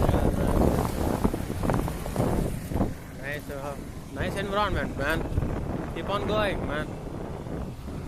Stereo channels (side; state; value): both; identical; correlation 1.00